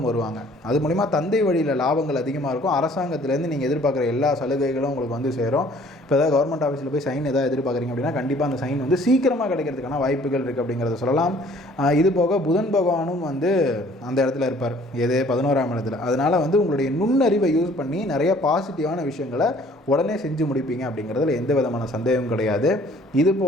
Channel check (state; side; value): normal; both; correlation 0.56